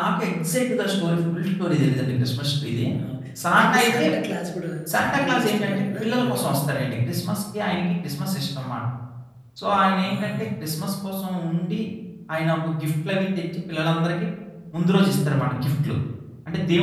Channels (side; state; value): both; identical; correlation 1.00